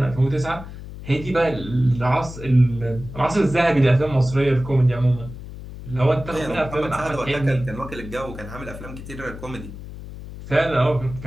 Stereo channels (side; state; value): left; noise; hum, 12 dB below the sound